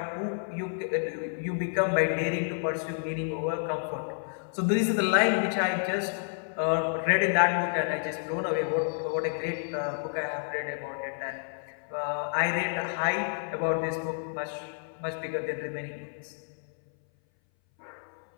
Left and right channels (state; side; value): silent; right; 58 dB below the other